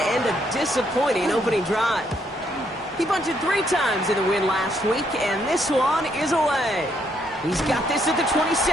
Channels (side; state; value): both; normal; correlation 0.73